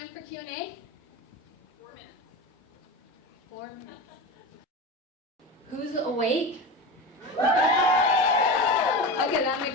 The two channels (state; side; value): normal; both; correlation 0.26